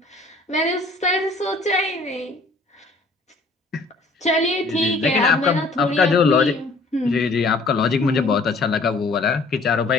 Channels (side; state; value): right; quieter; 3.2 dB